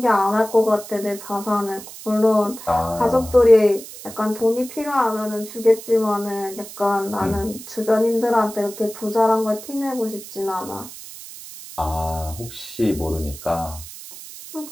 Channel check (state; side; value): noise; right; hiss, 14 dB below the sound